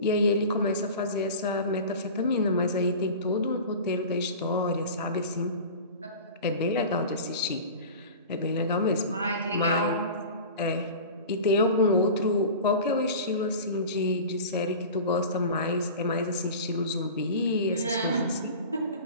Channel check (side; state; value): both; inverted; correlation -0.35